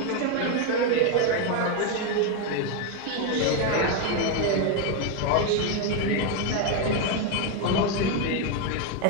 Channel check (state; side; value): different; both; correlation 0.01